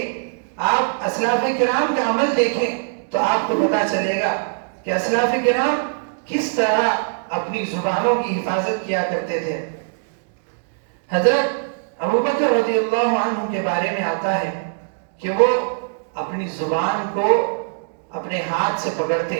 آپ اسلاف کرام کا عمل دیکھیں تو آپ کو پتا چلے گا کہ اسلاف کرام کس طرح اپنی زبانوں کی حفاظت کیا کرتے تھے۔ حضرت ابوبکر رضی اللہ عنہ کے بارے میں آتا ہے کہ وہ اپنی زبان کو اپنے ہاتھ سے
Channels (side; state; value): left; silent; digital silence